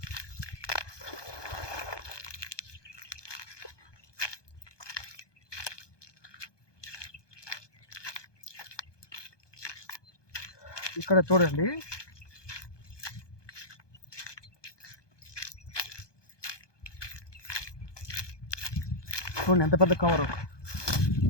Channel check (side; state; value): right; late; 1.2 ms